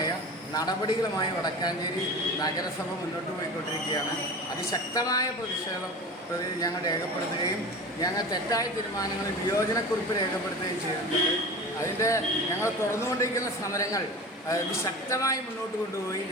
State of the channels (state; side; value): normal; both; correlation 0.33